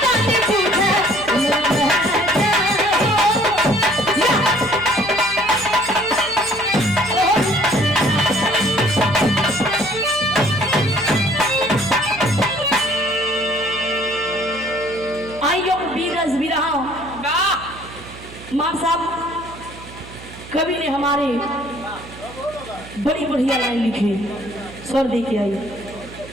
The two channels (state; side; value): noise; right; hum, 17 dB below the sound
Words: मार साहब कवि ने हमारे बड़ी बढ़िया लाइन लिखी, स्वर दे के आई।